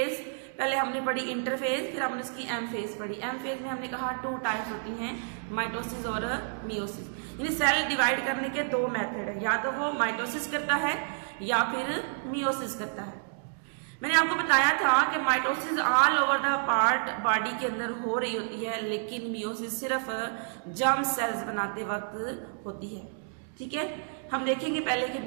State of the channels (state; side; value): silent; left; digital silence